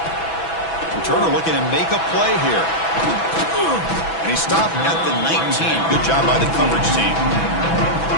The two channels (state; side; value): late; right; 6.1 ms